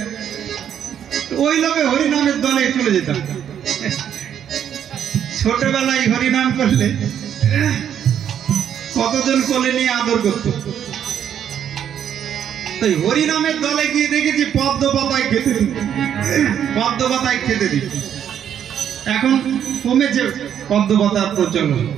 ওই লোকে হরিনামের দলে চলে যেতাম। ছোটবেলায় হরিনাম করলে কতজন কোলে নিয়ে আদর করত। তাই হরিনামের দলে গিয়ে দেখেছি পদ্ম পাতায় খেতে দিত, পদ্ম পাতায় খেতে দিত। এখন কমেছে পদ্ম পাতার প্রচলন।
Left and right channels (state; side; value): quieter; left; 9.3 dB